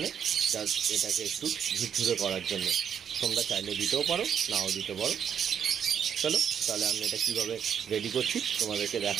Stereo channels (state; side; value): quieter; left; 8.2 dB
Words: জাস্ট এটাকে একটু ঝুরঝুরে করার জন্য তোমরা চাইলে দিতেও পারো নাও দিতে পারো। চলো তাহলে আমি এটা কীভাবে রেডি করছি তোমাদেরকে